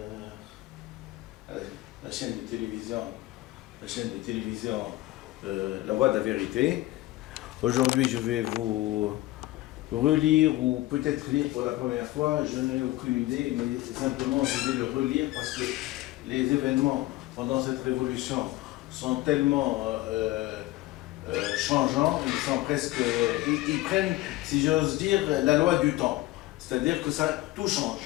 la chaîne de télévision, La Voix de la Vérité. Aujourd'hui, je vais vous relire ou peut-être lire pour la première fois. Je n'ai aucune idée, mais simplement je vais le relire parce que les événements pendant cette révolution sont tellement changeants, ils sont presque, ils prennent, si j'ose dire, la loi du temps. C'est-à-dire que tout change.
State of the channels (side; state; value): right; quieter; 17.6 dB